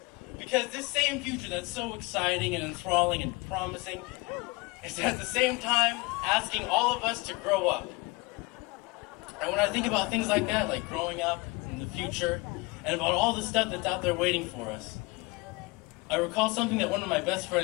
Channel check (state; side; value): quieter; right; 25.5 dB